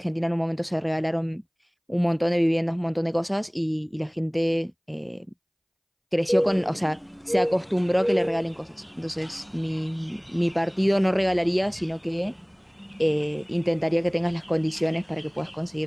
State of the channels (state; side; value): identical; both; correlation 1.00